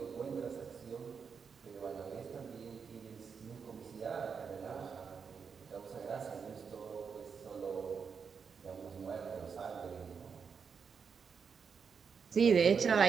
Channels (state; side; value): quieter; left; 6.1 dB